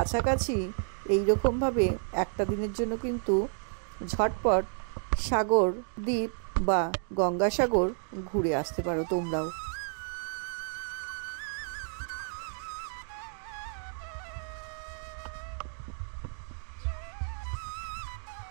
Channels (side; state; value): left; silent; 57 dB below the other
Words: এইরকমভাবে একটা দিনের জন্য কিন্তু ঝটপট সাগর দ্বীপ বা গঙ্গাসাগর ঘুরে আসতে পারো তোমরাও।